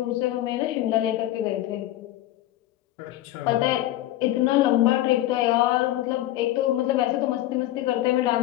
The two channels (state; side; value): quieter; right; 14.8 dB